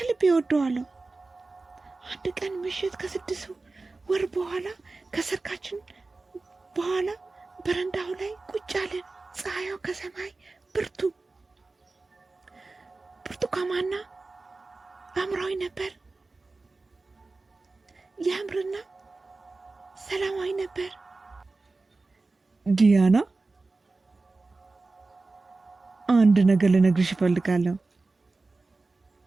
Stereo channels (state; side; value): quieter; left; 3.5 dB